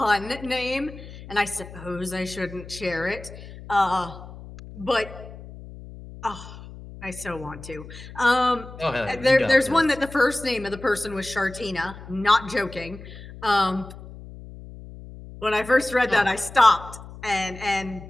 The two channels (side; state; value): left; noise; hum, 15 dB below the sound